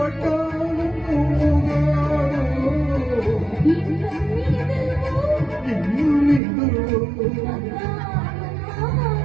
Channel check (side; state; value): left; drops out; at 6.4 s